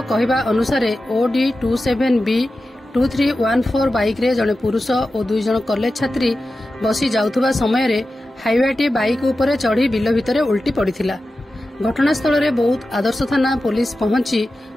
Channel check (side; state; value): both; normal; correlation 0.93